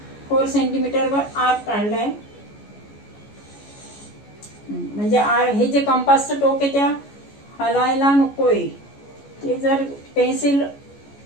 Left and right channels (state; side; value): late; right; 14 ms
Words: 4 सेंटीमीटरवर आर्क काढलाय. म्हणजे हे जे कंपासचं टोक आहे त्या हलायला नकोय. ते जर पेन्सिल